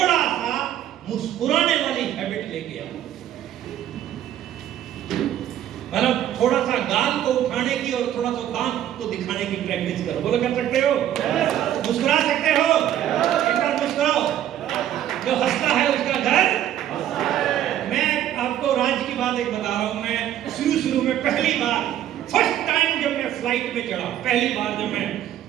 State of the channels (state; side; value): quieter; left; 11.5 dB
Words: सा मुस्कुराने वाली हैबिट लेके आओ। मतलब थोड़ा सा गाल को उठाने की और थोड़ा सा दांत को दिखाने की प्रैक्टिस करो। बोलो, कर सकते हो? मुस्कुरा सकते हो? एक बार मुस्कुराओ। जो हंसता है उसका घर। मैं आपको राज की बात एक बता रहा हूं। मैं शुरू में पहली बार, फर्स्ट टाइम जब मैं फ्लाइट में चढ़ा, पहली बार जब मैं